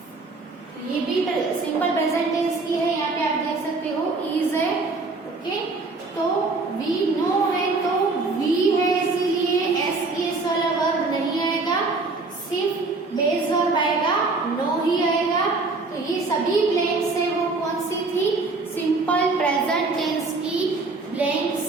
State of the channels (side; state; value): left; quieter; 3.7 dB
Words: ये भी सिंपल प्रेजेंट टेंस की है, यहाँ पे आप देख सकते हो इज है। ओके, तो वी नो है, तो वी है इसीलिए एस वाला वर्ब नहीं आएगा, सिर्फ बेस वर्ब आएगा, नो ही आएगा। तो ये सभी ब्लैंक्स है वो कौन सी थी? सिंपल प्रेजेंट टेंस की